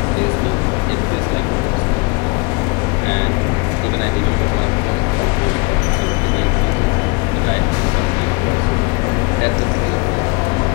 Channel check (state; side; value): quieter; right; 29.2 dB